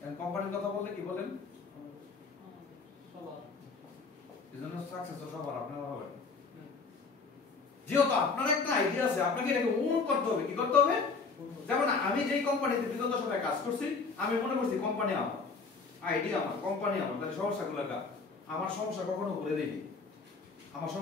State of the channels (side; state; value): right; quieter; 4.5 dB